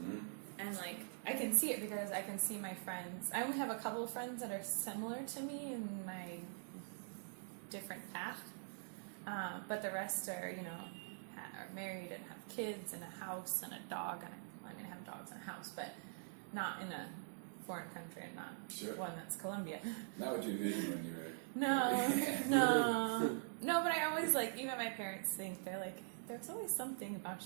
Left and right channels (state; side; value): silent; left; digital silence